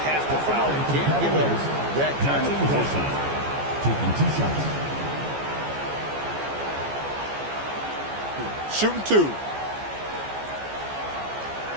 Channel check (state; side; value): late; left; 14 ms